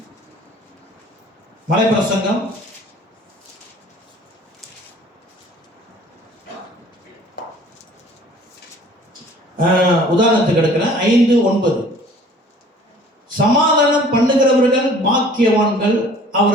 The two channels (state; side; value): normal; both; correlation 0.51